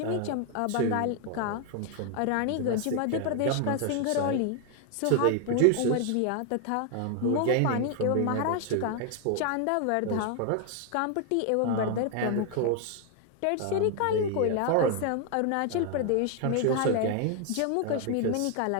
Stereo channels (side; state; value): both; different; correlation 0.00